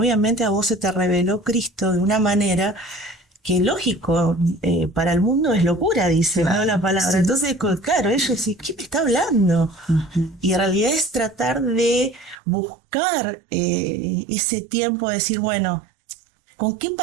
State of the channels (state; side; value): drops out; left; at 12.4 s